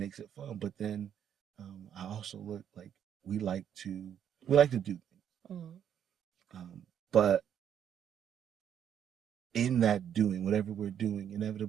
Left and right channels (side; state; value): left; quieter; 9.1 dB